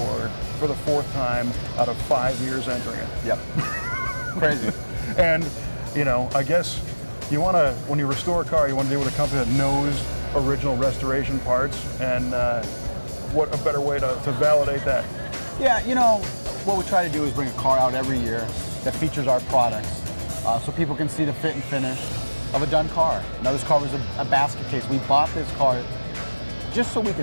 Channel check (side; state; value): both; inverted; correlation -1.00